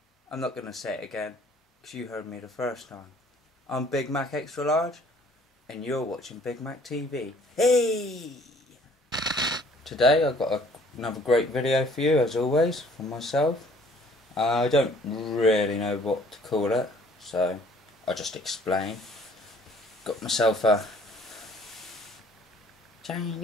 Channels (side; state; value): both; normal; correlation 0.57